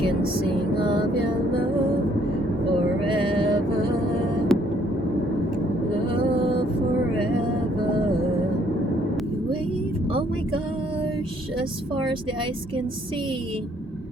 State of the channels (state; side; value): normal; both; correlation 0.65